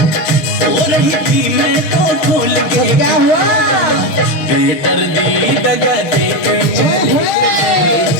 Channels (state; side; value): late; right; 6.1 ms